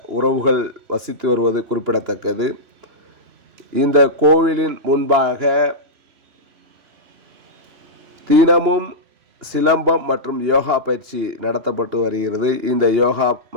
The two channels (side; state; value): left; late; 2.8 ms